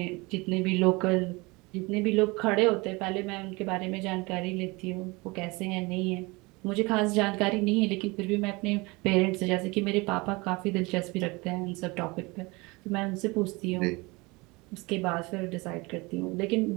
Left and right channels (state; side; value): quieter; left; 25.1 dB